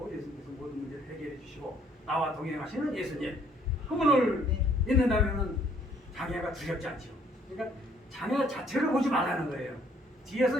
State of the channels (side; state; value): both; normal; correlation 0.63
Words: 예수님께서 모든 문제를 해결해 주시고 나와 동행하시는 예수님 그분을 믿는다면은 장애가 두렵지 않죠. 그러니까 장애 자체를 보지 말라는 거예요.